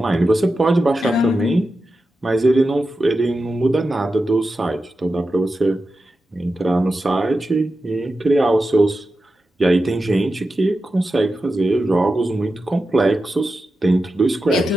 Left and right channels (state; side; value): normal; both; correlation 0.91